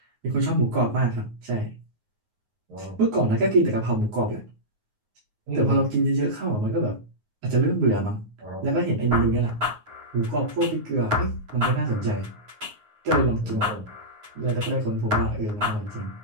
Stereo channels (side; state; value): left; late; 9.5 ms